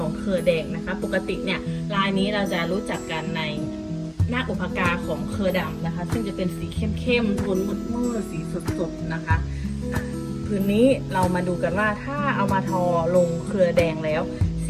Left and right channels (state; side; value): identical; both; correlation 1.00